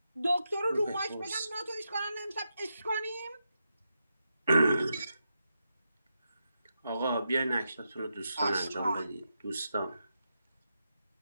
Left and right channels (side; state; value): both; inverted; correlation -0.86